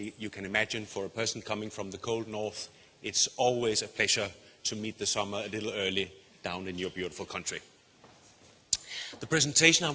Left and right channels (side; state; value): both; identical; correlation 1.00